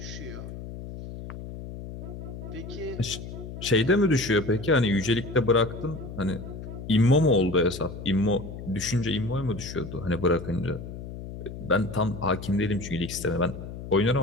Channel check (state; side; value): noise; left; hum, 10 dB below the sound